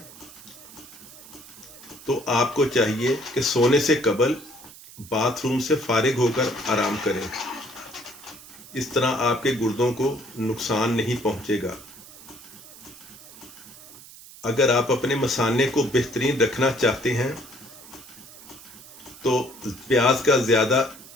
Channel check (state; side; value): noise; right; hiss, 18 dB below the sound